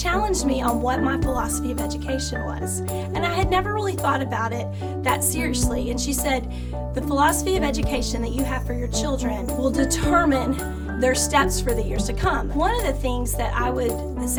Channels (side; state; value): both; identical; correlation 1.00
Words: me on what my philosophy of education was. And I had never really thought about it that seriously. And she said, the philosophy of education that you have for your children will determine their steps for the years to come. One of the things that I would